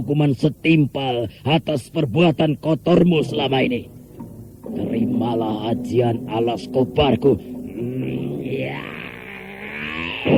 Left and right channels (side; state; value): both; identical; correlation 1.00